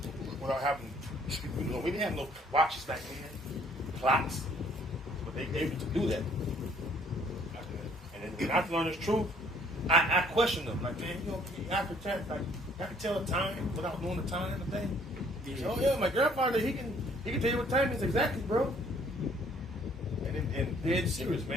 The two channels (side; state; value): both; normal; correlation 0.61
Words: Without having, we didn't have no watches back then, clocks. They able to do that. And then when I learn this truth, I question them. Like, man, I can tell the time without knowing the time and the thing. Oh yeah, my grandfather, he can tell you what time it is exactly, bro. And dead serious,